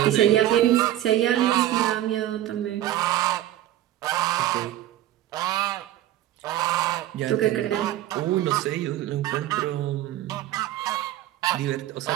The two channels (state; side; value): quieter; left; 13.5 dB